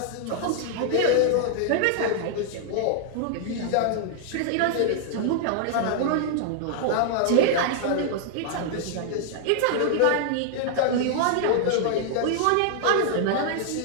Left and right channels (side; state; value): both; different; correlation -0.01